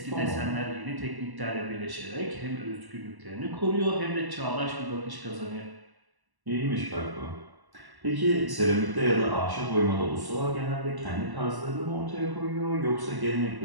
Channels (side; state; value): left; late; 1.1 ms